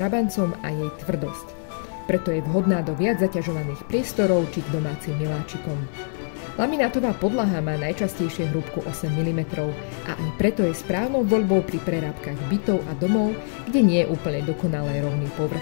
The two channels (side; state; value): right; silent; 62 dB below the other